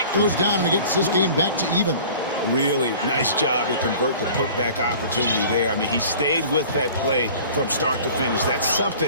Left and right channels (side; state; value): both; inverted; correlation -0.45